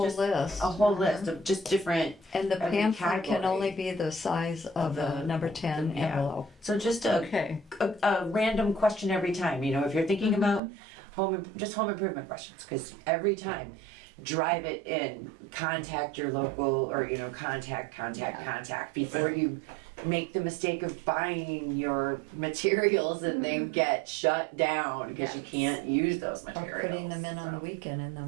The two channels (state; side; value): drops out; left; at 10.6 s